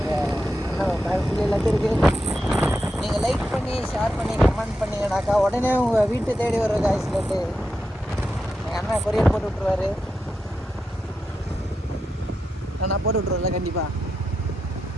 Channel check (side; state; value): both; normal; correlation 0.87